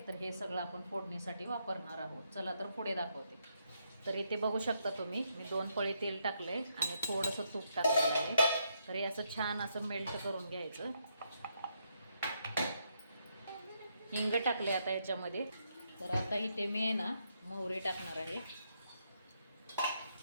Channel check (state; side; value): inverted; both; correlation -0.77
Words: तर हे सगळं आपण फोडणीसाठी वापरणार आहोत. चला तर पुढे दाखवते. तर इथे बघू शकता तुम्ही, मी 2 पळी तेल टाकलं आहे आणि थोडंसं तूप टाकलेलं आहे. तर हे असं छान असं मेल्ट करून घ्यायचं. हिंग टाकले आता ह्याच्यामध्ये. तर आता इथे मी आहे ना मोहरी टाकणार आहे.